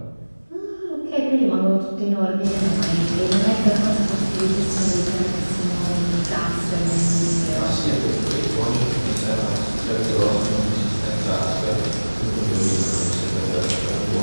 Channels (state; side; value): inverted; both; correlation -1.00